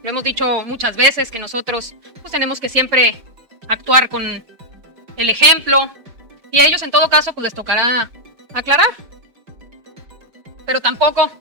Lo hemos dicho muchas veces que nosotros pues, tenemos que siempre actuar con el ejemplo y a ellos en todo caso pues les tocará aclarar. Pero tampoco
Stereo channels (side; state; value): left; late; 5.1 ms